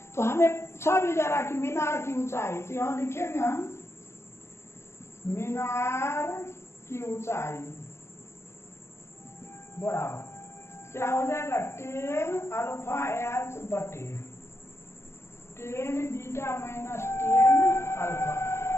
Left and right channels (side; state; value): right; late; 0.13 ms